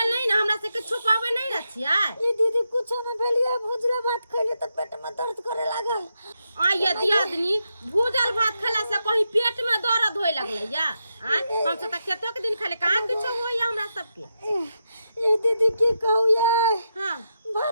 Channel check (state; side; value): inverted; both; correlation -0.85